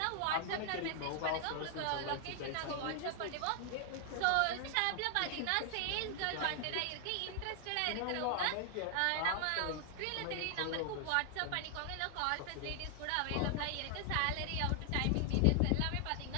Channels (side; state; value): both; different; correlation 0.00